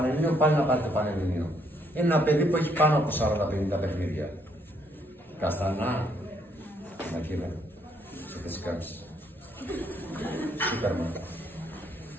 πάλι να πάρει το Πανελλήνιο. Είναι ένα παιδί που έχει πάνω από 40-50 παιχνίδια. Καστανά, Μακίδα, σε θες κάνεις. Σούπερμαν.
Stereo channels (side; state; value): both; normal; correlation 0.71